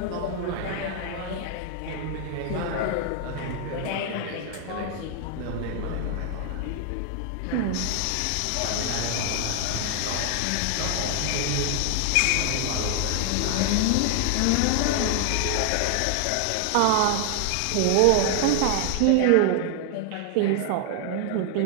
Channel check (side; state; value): both; different; correlation 0.00